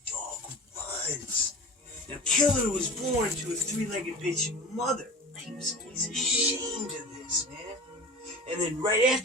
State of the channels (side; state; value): both; normal; correlation 0.35